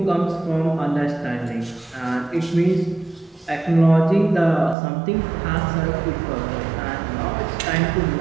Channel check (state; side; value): drops out; left; at 4.8 s